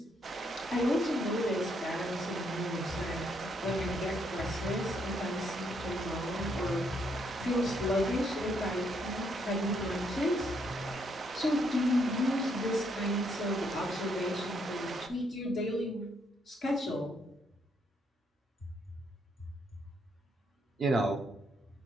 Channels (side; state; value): both; normal; correlation 0.73